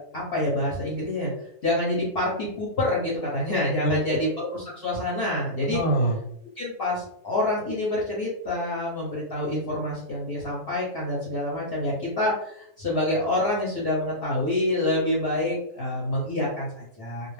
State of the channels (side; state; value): both; normal; correlation -0.13